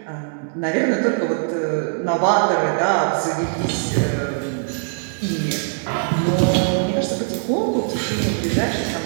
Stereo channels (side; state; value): left; silent; digital silence